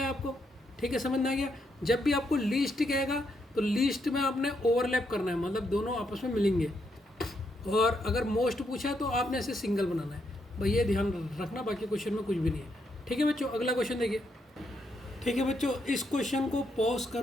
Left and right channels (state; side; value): normal; both; correlation 0.78